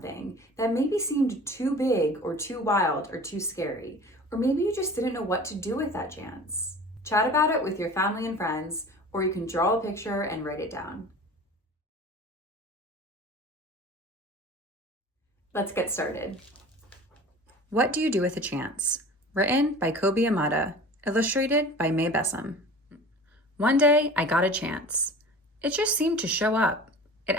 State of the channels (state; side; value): normal; both; correlation 0.40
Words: that maybe seemed too big or too wild or too scary, or maybe you just didn't know what to do with that chance? Chat about it with your family and friends, or you can draw a picture and write it down. Let's get started. What Do You Do with a Chance? Written by Kobe Yamada, illustrated by May Bessam. One day, I got a chance. It just seemed to show up. It